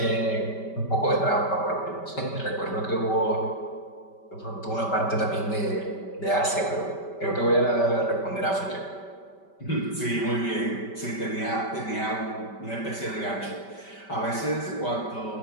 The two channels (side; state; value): right; late; 5.1 ms